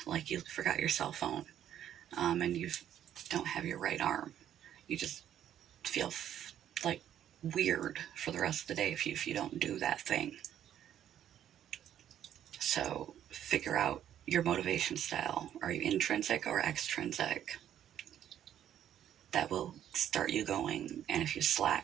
like you forgot your cell phone, and you don't have your right arm. You just feel like weird for the rest of the day if you don't do that thing. So figure out your motivation style. Are you intrinsic or extrinsic? That will start you going. And if you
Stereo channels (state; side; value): quieter; left; 10.5 dB